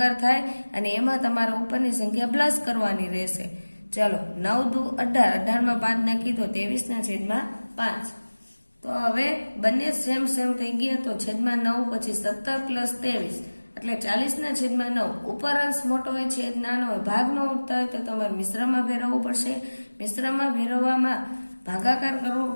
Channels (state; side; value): inverted; both; correlation -1.00